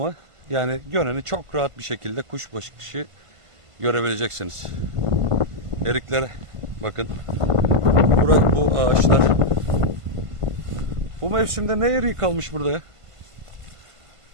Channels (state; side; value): late; left; 1.5 ms